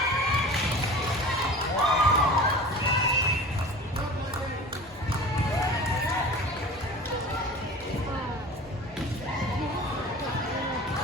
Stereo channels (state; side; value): normal; both; correlation 0.38